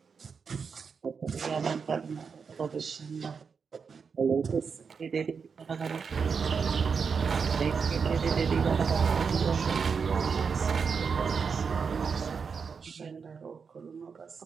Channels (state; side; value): quieter; left; 5.8 dB